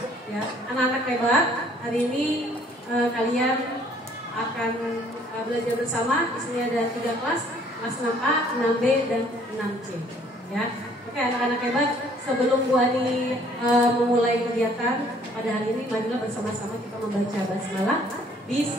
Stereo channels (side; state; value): both; normal; correlation 0.59